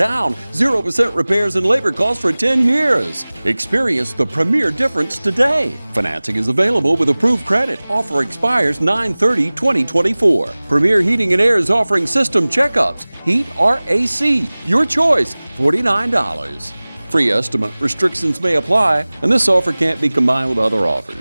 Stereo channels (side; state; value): both; inverted; correlation -1.00